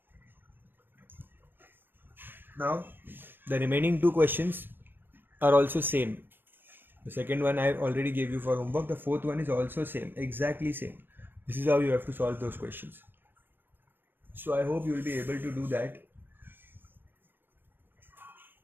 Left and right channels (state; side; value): late; left; 0.096 ms